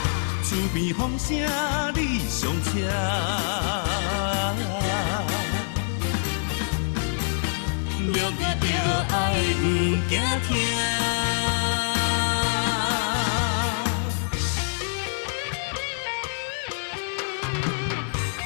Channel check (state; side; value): silent; right; 58 dB below the other